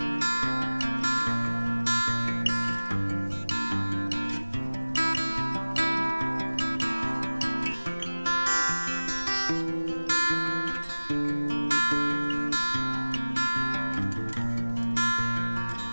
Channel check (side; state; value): both; inverted; correlation -1.00